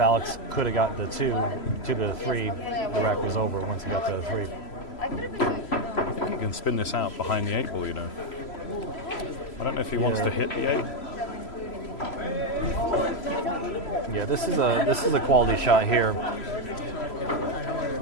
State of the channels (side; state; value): right; late; 3.0 ms